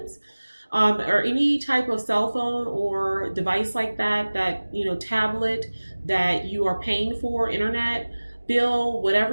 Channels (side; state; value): both; inverted; correlation -1.00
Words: Or any type of cell phone or device like that, tablet that you are paying for, internet bill,